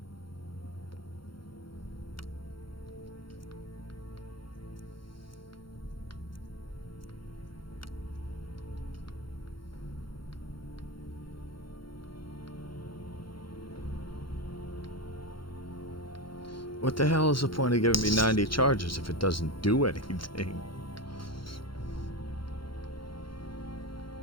What the hell is the point of giving me 90 charges if it doesn't do anything?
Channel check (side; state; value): right; late; 0.73 ms